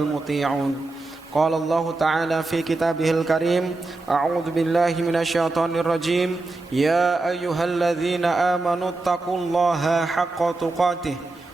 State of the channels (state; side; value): quieter; left; 3.2 dB